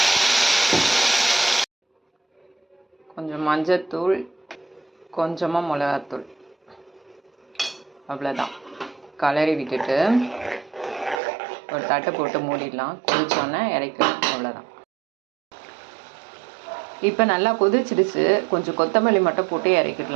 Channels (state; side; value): drops out; left; at 11.2 s